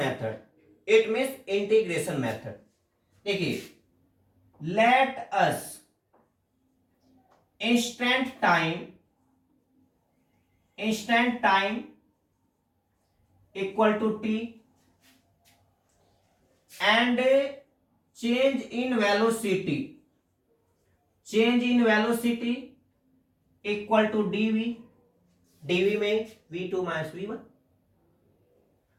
it means integration method. देखिए let us instant time equal to t and change in velocity equal to dv में v2 माइनस v1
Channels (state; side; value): identical; both; correlation 1.00